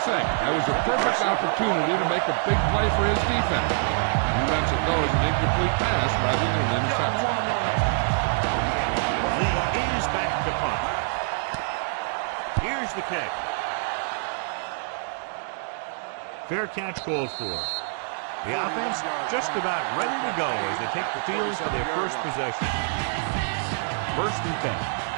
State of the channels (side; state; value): left; silent; digital silence